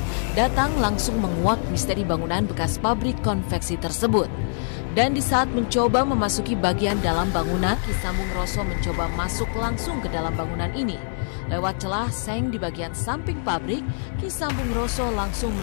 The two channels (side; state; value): right; silent; digital silence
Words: datang langsung menguak misteri bangunan bekas pabrik konveksi tersebut. Dan di saat mencoba memasuki bagian dalam bangunan, Ki Sambung Roso mencoba masuk langsung ke dalam bangunan ini. Lewat celah seng di bagian samping pabrik, Ki Sambung Roso langsung